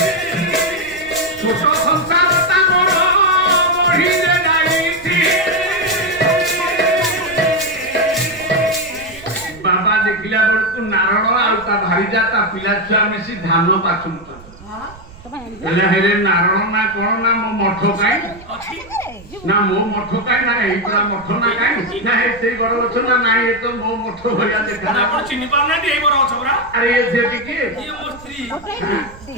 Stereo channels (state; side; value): noise; right; rumble, 21 dB below the sound